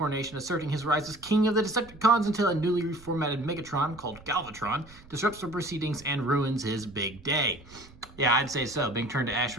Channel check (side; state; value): right; noise; rumble, 22 dB below the sound